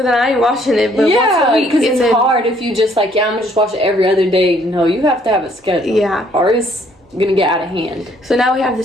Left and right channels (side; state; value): both; normal; correlation 0.64